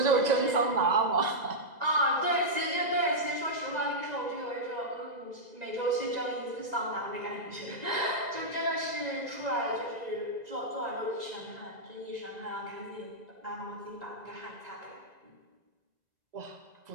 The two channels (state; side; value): late; left; 2.0 ms